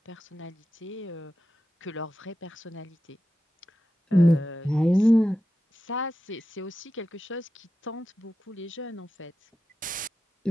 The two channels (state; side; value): normal; both; correlation 0.91